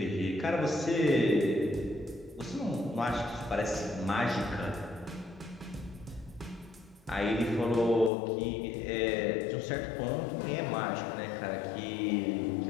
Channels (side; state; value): right; drops out; at 8.1 s